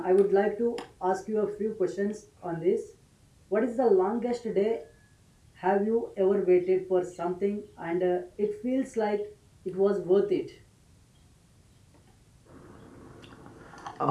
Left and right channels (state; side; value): identical; both; correlation 1.00